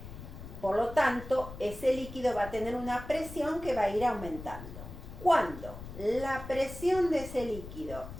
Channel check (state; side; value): noise; left; rumble, 12 dB below the sound